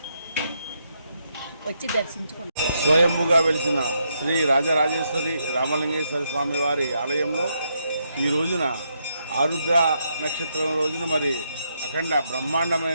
వచ్చి దర్శించుకుంటారు. స్వయంభుగా వెలిసిన శ్రీ రాజరాజేశ్వరి రామలింగేశ్వర స్వామి వారి ఆలయంలో ఈ రోజున ఆరుద్ర నక్షత్రం రోజున మరి అఖండ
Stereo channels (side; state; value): both; inverted; correlation -0.79